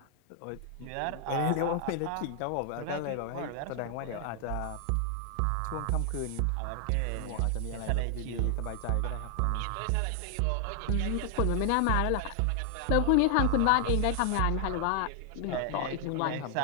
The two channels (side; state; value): both; different; correlation 0.00